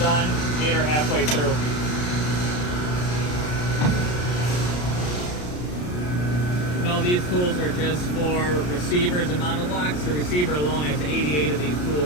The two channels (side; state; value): right; late; 33 ms